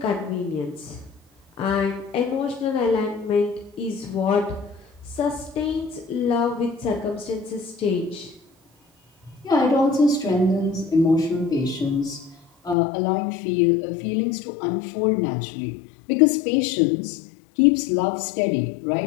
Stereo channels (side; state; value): right; drops out; at 12.8 s